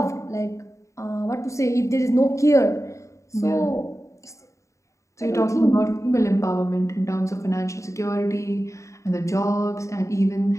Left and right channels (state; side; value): late; right; 0.15 ms